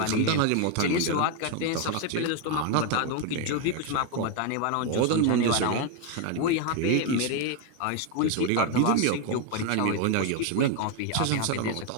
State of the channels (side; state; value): both; different; correlation 0.01